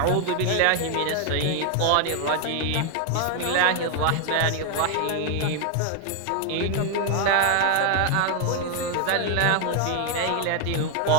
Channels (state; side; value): different; both; correlation 0.00